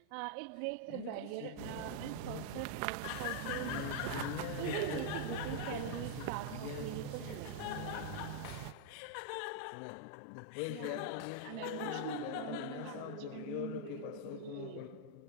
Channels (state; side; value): different; both; correlation -0.01